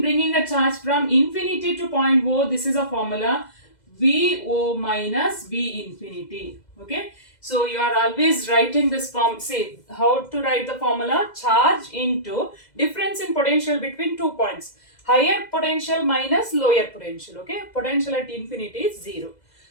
bringing a charge from infinity to point O, this is a formula, VO minus V infinity. Okay, so you are always writing this form. Say how to write the formula: charge into difference in potential between 2 points, higher potential minus lower potential. Okay, potential at infinity is 0.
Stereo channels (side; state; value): right; late; 2.0 ms